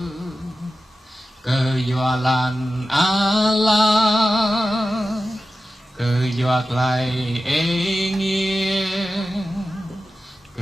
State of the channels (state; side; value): normal; both; correlation 0.93